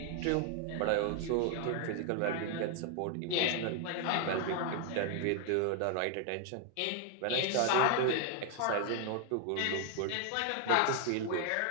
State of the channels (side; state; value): both; different; correlation 0.00